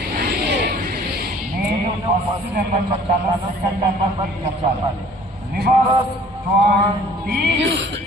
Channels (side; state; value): both; normal; correlation 0.52